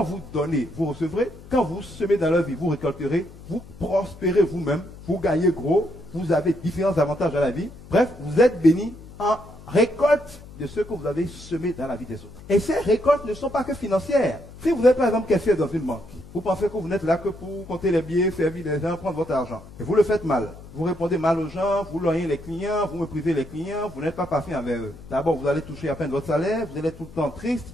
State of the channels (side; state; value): left; noise; hum, 18 dB below the sound